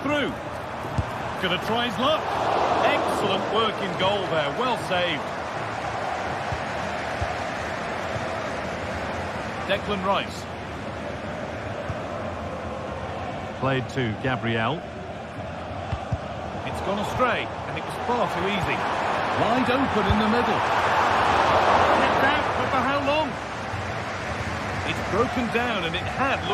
Gonna try his luck. Excellent work in goal there, well saved. Declan Rice. Played to Gabriel. It's gone astray, and it was far too easy. Wide open in the middle. Kept out, but for how long? It's broken down, and it had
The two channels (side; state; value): both; identical; correlation 1.00